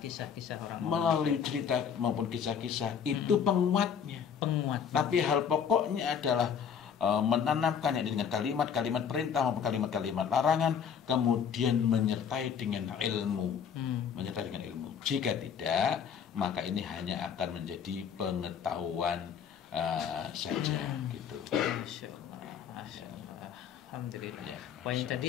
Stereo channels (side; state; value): right; quieter; 7.5 dB